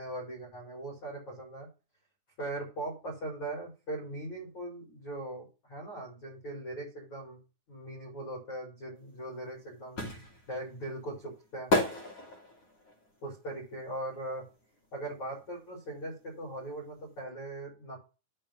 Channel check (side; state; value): right; late; 9.6 ms